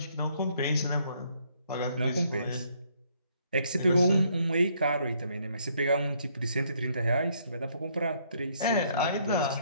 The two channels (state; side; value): inverted; both; correlation -0.68